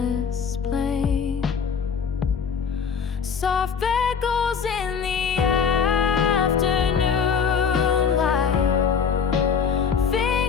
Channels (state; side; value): quieter; right; 6.5 dB